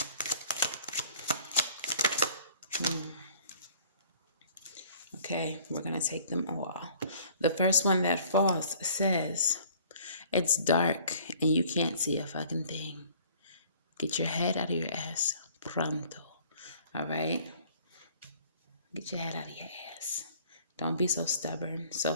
Okay, we're gonna take them all. The first one that falls says, it's dark and you can't see a fucking thing. Get your head out of your ass pronto. All right? Get your head out of your ass. Don't be so stubborn, so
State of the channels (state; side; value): inverted; both; correlation -0.54